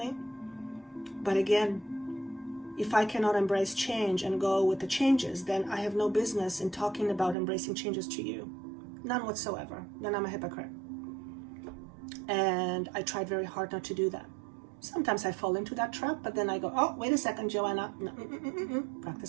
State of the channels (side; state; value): left; drops out; at 7.4 s